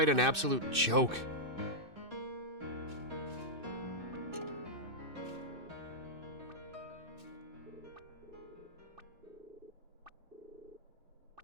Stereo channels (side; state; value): left; late; 2.6 ms